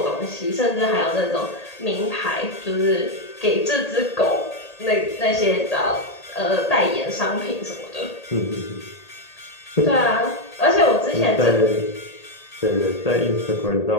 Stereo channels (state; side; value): late; right; 1.8 ms